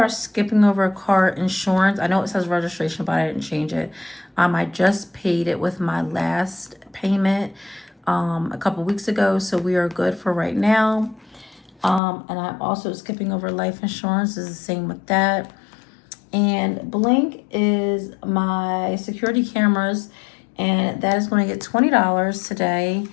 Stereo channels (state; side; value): drops out; right; at 12.0 s